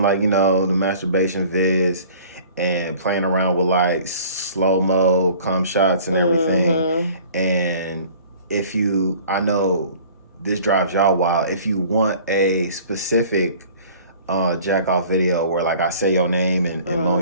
like the masturbation vids and playing around with like slow-mo cum shots and everything. And I know this drives y'all wild. If you want a specific jack off video where like I say your name and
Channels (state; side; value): inverted; both; correlation -0.48